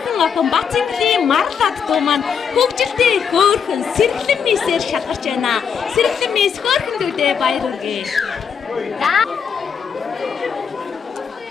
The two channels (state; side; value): quieter; right; 6.9 dB